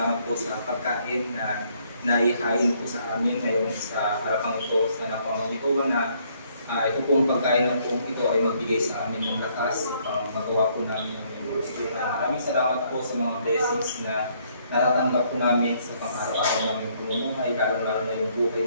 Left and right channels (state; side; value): inverted; both; correlation -0.67